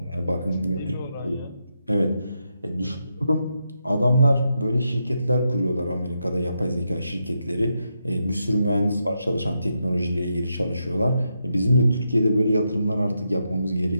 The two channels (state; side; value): inverted; both; correlation -0.83